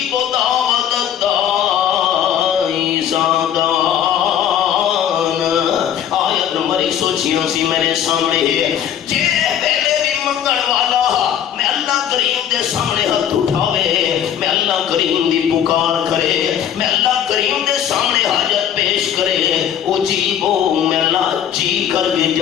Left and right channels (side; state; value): right; quieter; 9.7 dB